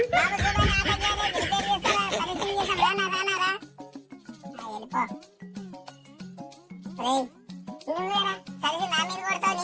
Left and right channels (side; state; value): both; identical; correlation 1.00